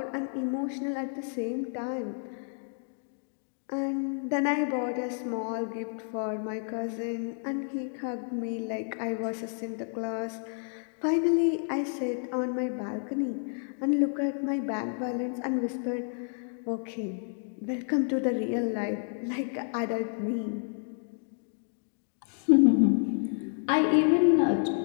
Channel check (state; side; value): silent; right; 58 dB below the other